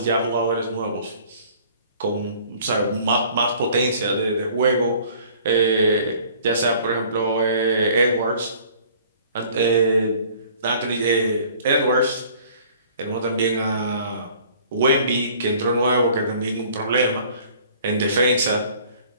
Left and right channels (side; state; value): both; inverted; correlation -0.53